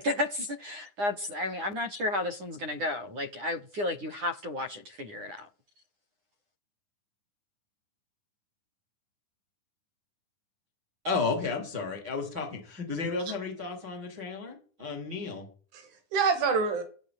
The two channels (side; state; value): left; late; 9.8 ms